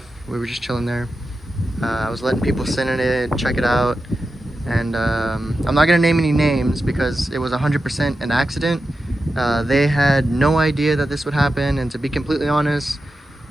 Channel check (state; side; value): normal; both; correlation 0.91